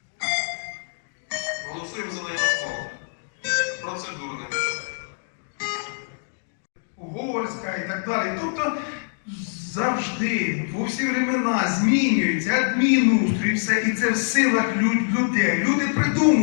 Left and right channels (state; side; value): silent; right; digital silence